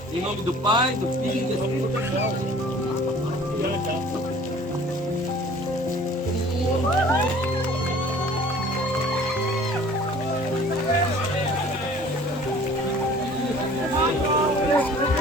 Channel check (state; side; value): normal; both; correlation 0.49